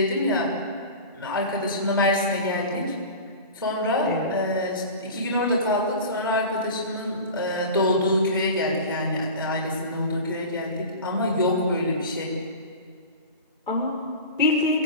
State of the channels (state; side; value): inverted; both; correlation -0.33